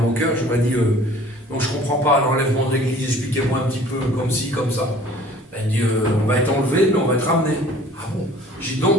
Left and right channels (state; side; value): normal; both; correlation 0.51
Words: cœur, j'aurais dit donc je ne comprends pas l'enlèvement de l'église, expliquez-moi un petit peu comme ci, comme ça. Elle dit on va être enlevé, mais on va être ramené. Ah bon? J'ai dit